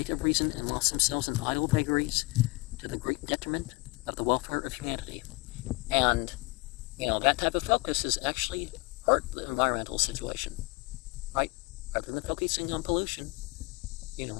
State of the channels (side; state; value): right; quieter; 25.1 dB